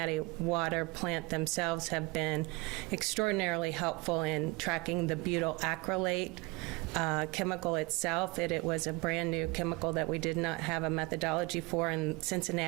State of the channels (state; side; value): quieter; left; 24.1 dB